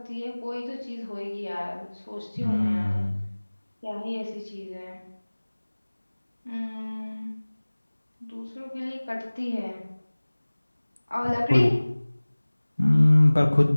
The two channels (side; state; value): both; inverted; correlation -1.00